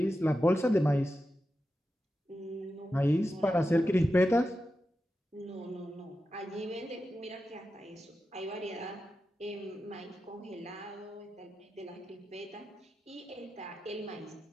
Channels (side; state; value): both; normal; correlation 0.91